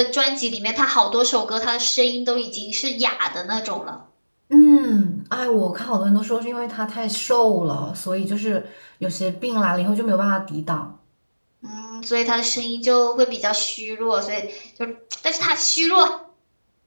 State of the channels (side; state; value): both; inverted; correlation -1.00